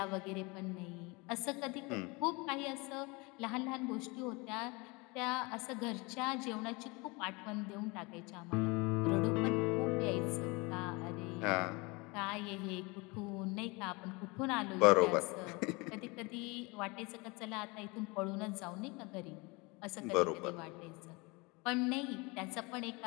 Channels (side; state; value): right; quieter; 26.7 dB